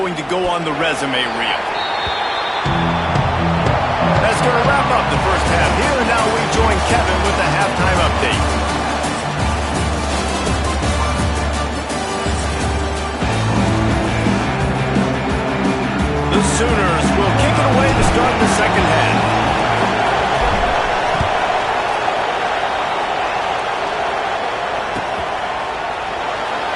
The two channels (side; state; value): both; identical; correlation 1.00